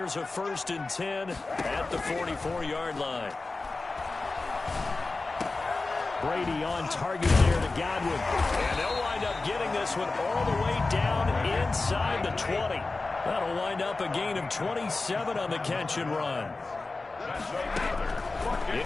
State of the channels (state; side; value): quieter; right; 3.5 dB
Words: a 1st and 10 at the 44-yard line. Brady on target there to Godwin. And they'll wind up getting this one all the way down inside the 20. That'll wind up a gain of 27 on the catch and run.